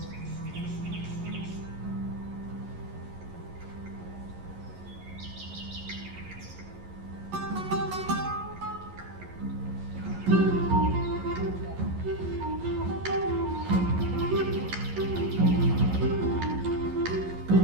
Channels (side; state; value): left; late; 11 ms